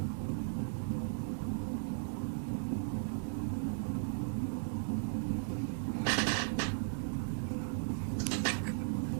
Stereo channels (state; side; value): silent; left; 53 dB below the other